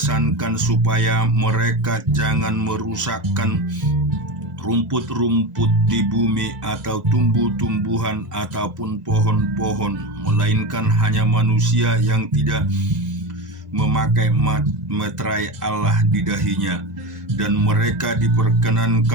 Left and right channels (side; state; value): left; late; 2.0 ms